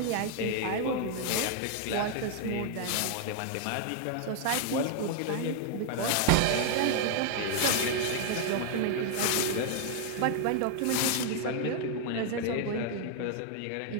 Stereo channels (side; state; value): both; different; correlation 0.00